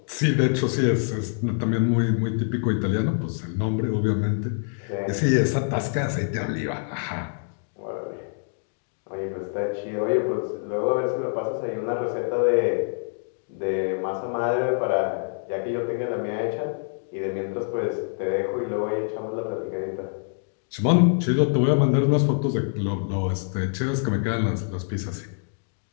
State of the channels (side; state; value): right; silent; digital silence